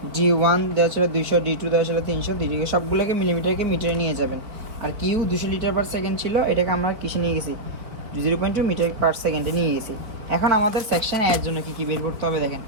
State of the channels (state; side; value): late; left; 4.6 ms